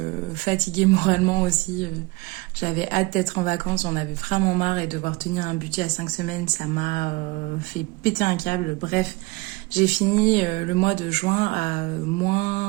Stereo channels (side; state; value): left; quieter; 23.5 dB